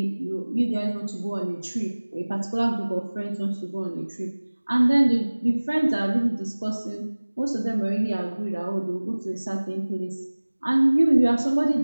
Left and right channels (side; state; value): both; inverted; correlation -1.00